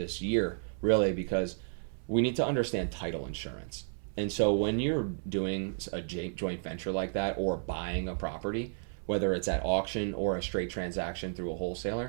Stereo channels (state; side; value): silent; left; 56 dB below the other